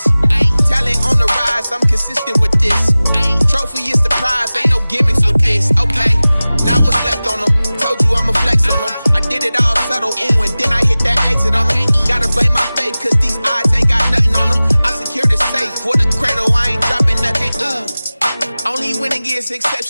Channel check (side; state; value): both; inverted; correlation -0.98